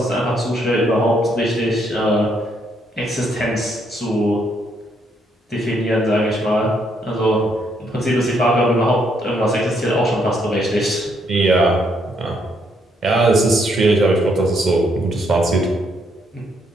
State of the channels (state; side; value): normal; both; correlation 0.73